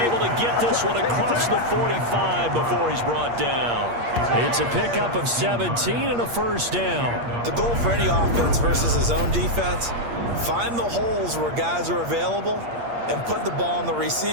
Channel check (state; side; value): late; left; 8.5 ms